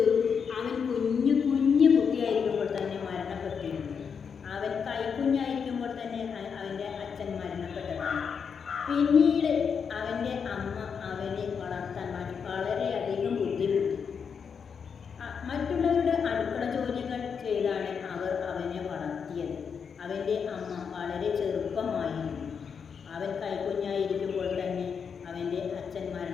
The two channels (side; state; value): right; quieter; 6.5 dB